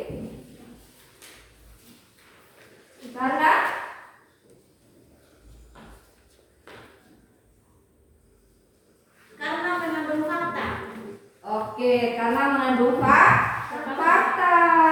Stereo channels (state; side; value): identical; both; correlation 1.00